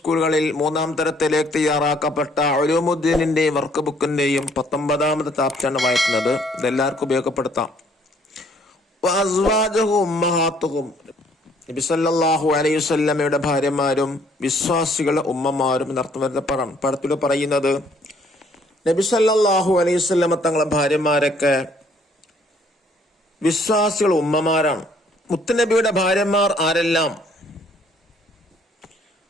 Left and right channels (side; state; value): both; normal; correlation 0.63